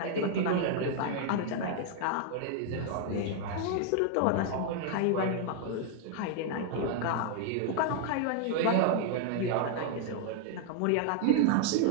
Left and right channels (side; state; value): both; different; correlation 0.00